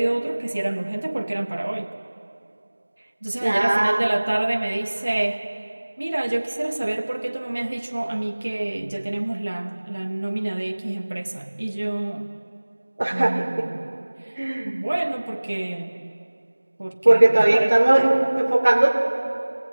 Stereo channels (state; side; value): inverted; both; correlation -1.00